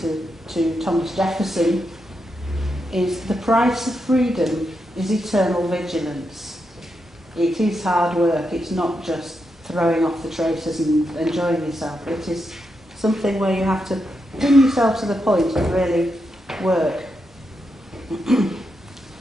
to Thomas Jefferson, is the price of freedom is eternal vigilance. It is hard work, it's not just throwing off the traces and enjoying yourself. It is something where you have to bring yourself to the point of really work.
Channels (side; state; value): both; normal; correlation 0.84